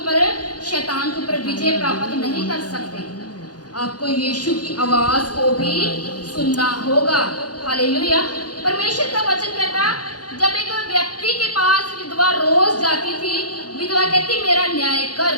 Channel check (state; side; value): late; right; 0.69 ms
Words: शैतान के ऊपर विजय प्राप्त नहीं कर सकते। आपको यीशु की आवाज को भी सुनना होगा। हालेलुया। परमेश्वर का वचन कहता, जब एक व्यक्ति के पास विधवा रोज जाती थी, विधवा कहती मेरा न्याय